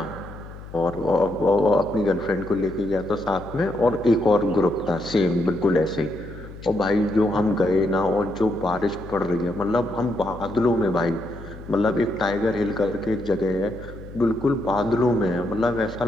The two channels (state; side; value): noise; left; hum, 15 dB below the sound